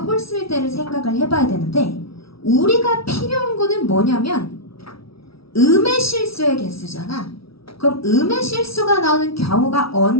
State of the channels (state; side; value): late; right; 0.75 ms